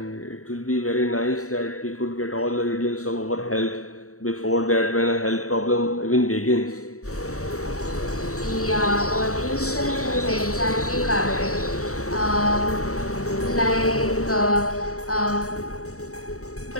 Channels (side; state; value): right; late; 0.64 ms